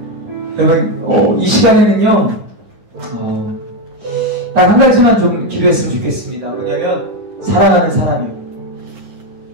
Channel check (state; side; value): late; left; 9.6 ms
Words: 여러분, 이 시간에는요, 딱 한 가지만 좀 기도했으면 좋겠습니다. 뭐냐면, 사랑하는 사람이요.